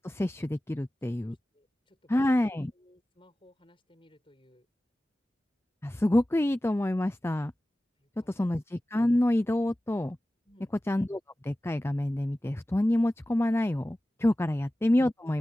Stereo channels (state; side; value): normal; both; correlation 0.96